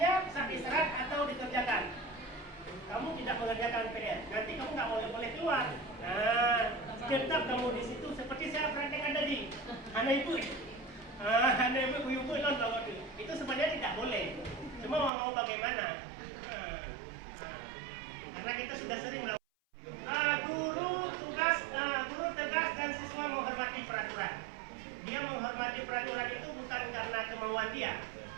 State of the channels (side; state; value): left; drops out; at 15.1 s